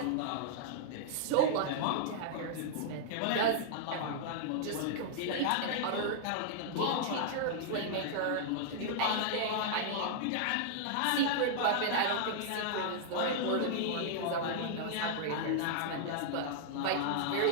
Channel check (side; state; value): both; different; correlation -0.01